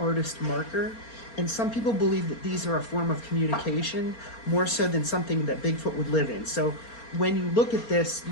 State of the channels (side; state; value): right; late; 4.3 ms